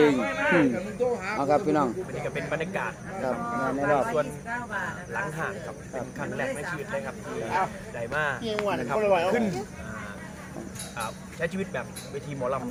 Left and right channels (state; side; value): identical; both; correlation 1.00